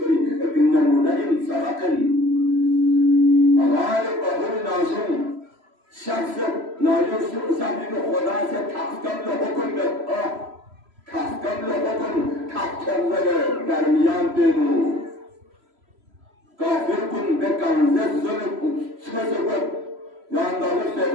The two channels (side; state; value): left; late; 3.0 ms